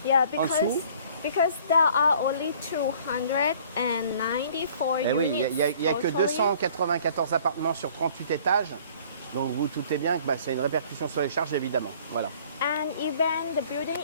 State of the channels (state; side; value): inverted; both; correlation -0.53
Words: Yeah, en dessous. because there are only 294 Eh oui, units. il n'y a que totally. 294 appartements sur 38 étages. Donc vous doutez bien que c'est une répercussion sur les charges évidemment. Voilà. And even the building